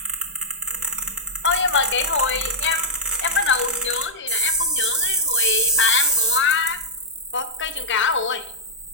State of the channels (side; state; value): both; normal; correlation -0.10